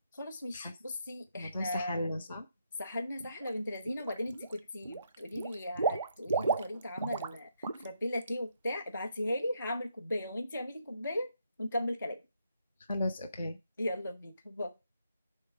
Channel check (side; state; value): both; inverted; correlation -0.76